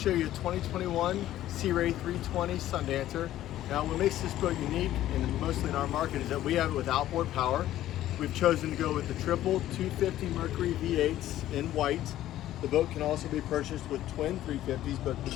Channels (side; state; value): right; quieter; 13.4 dB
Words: you a 2021 Sea Ray 320 Sundancer. Now what makes this boat unique, and mostly in our market, is that we have it with outboard power. We've chosen to go with the triple 250 Mercury V8s in white. The boat can also be purchased with twin 350s, but